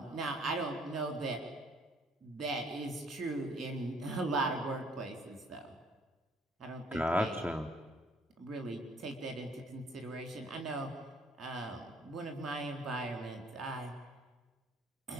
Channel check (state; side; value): normal; both; correlation 0.61